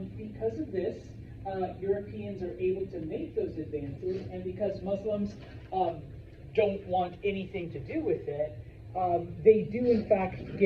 Because of this, Europeans are able to make those advances, and because Muslims don't want anything to do with it, they do in fact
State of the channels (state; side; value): identical; both; correlation 1.00